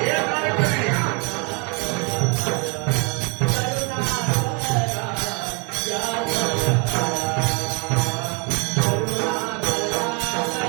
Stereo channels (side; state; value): left; quieter; 33.5 dB